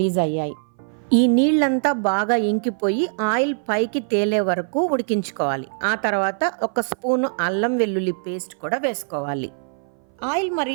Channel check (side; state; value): left; silent; 58 dB below the other